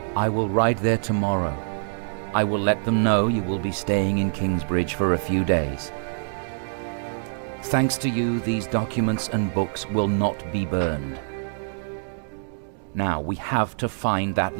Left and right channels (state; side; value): silent; left; digital silence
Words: I will ride there tomorrow. I will let them know you will be staying in Kingsbridge for a few days. Thanks to you, these documents and books will not be burned. Now, we have to find that